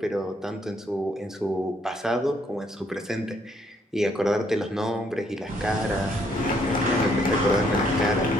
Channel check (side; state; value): both; normal; correlation 0.69